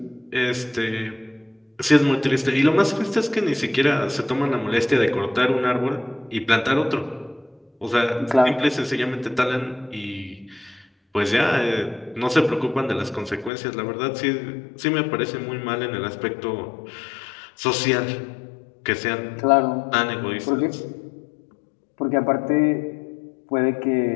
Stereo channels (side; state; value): right; drops out; at 13.5 s